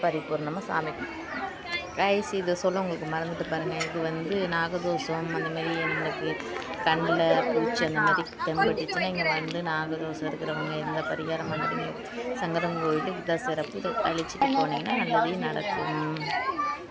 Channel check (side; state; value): both; identical; correlation 1.00